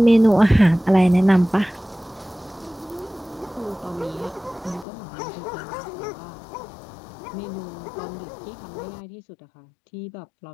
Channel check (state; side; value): drops out; right; at 4.9 s